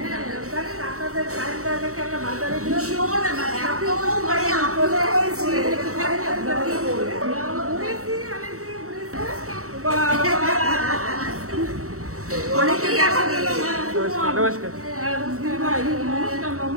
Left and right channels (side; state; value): left; late; 0.64 ms